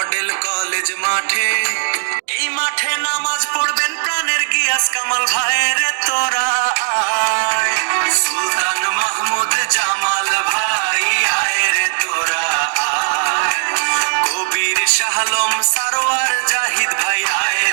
কলেজ মাঠে, এই মাঠে নামাজ পড়বেন প্রাণের গিয়াস কামাল ভাইয়ের তোরা আয়। সুলতান মাহমুদ জামাল ভাই আয় রে তোরা আয়। কবির শাহলম সারোয়ার জাহিদ ভাই আয়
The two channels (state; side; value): silent; left; digital silence